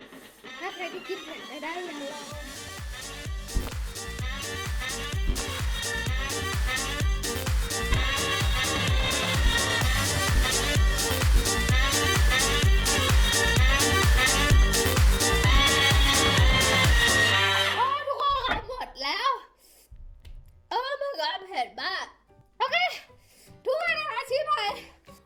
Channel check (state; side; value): identical; both; correlation 1.00